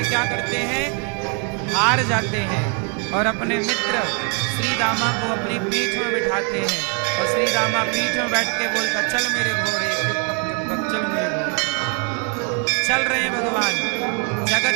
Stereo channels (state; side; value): quieter; left; 38.4 dB